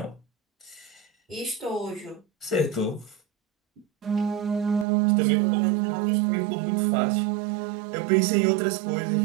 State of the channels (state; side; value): drops out; left; at 4.9 s